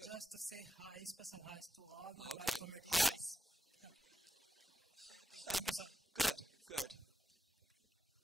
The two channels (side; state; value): both; normal; correlation 0.90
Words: Just to say hi, special hi to all my bioinformaticians. Hi. Thank you. Thank you, sir. Good, good.